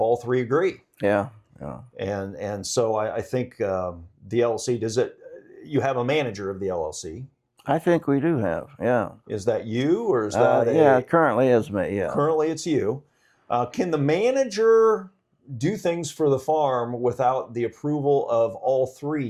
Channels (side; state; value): both; identical; correlation 1.00